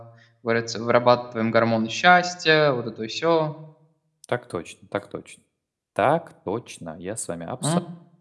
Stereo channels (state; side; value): identical; both; correlation 1.00